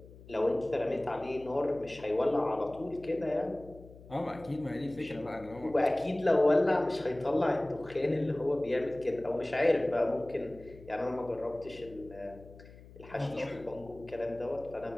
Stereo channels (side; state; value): left; noise; hum, 19 dB below the sound